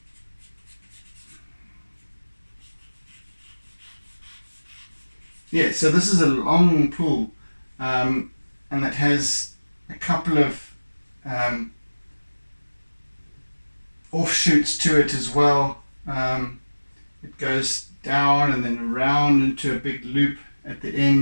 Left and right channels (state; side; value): inverted; both; correlation -1.00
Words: Yeah, so this is a long pool, and it has a couple of offshoots to it as well. It goes down and then around into a big loop at the